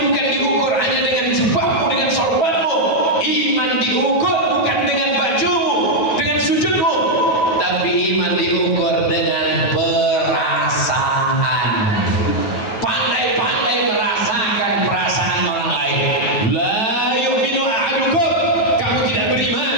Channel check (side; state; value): right; late; 9.3 ms